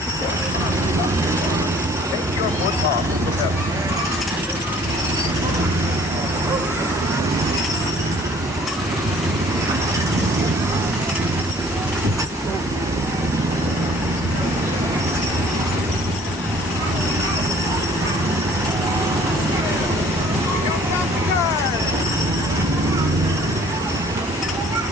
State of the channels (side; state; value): both; normal; correlation 0.55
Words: take your foot off the pedal.